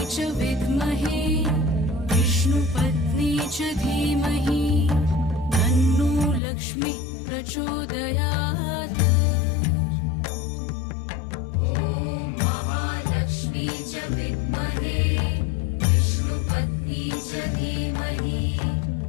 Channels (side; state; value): right; drops out; at 6.4 s